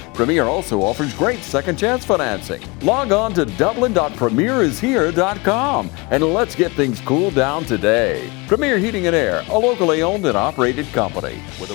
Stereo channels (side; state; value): right; quieter; 26.9 dB